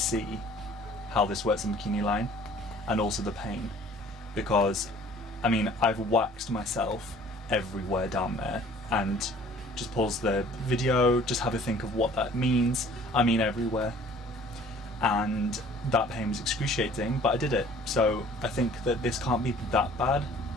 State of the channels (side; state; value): both; normal; correlation 0.52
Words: how this works in bikini line and also the pain, because I mean, I've waxed myself everywhere down there, and just pause the video, just have a think of what that means. I mean everywhere, and that pain was excruciating, but I did it, so I think that this can't be that bad.